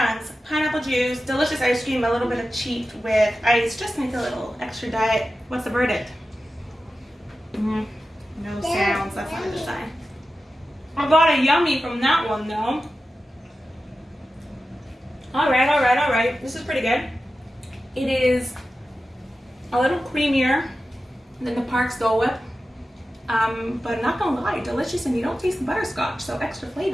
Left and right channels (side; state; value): both; normal; correlation 0.93